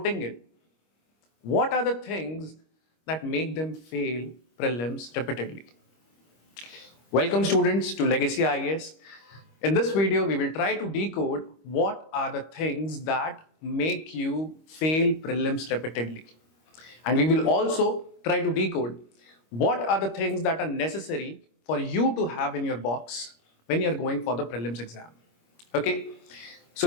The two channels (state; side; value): late; right; 25 ms